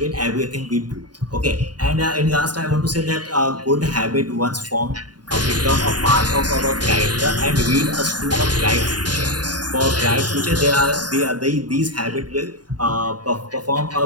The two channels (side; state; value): left; late; 0.70 ms